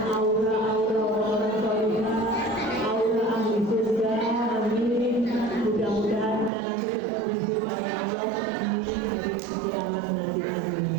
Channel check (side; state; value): left; drops out; at 6.5 s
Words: aura-aura orang soleh, aura ahli surga. Amin. Mudah-mudahan kita nanti ketemu dengan Allah di hari kiamat nanti.